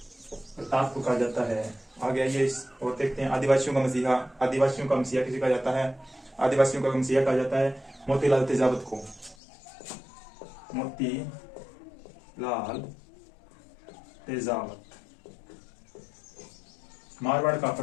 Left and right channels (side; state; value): right; drops out; at 9.3 s